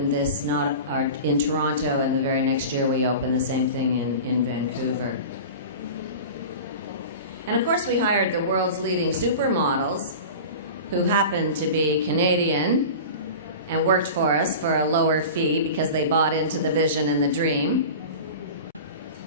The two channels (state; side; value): inverted; both; correlation -0.34